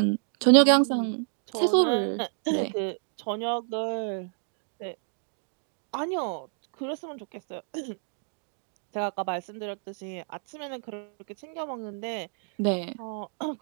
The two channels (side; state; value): left; silent; 58 dB below the other